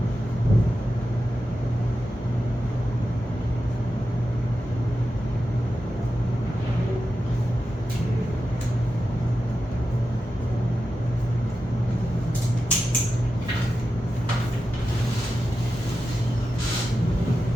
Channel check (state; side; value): normal; both; correlation 0.91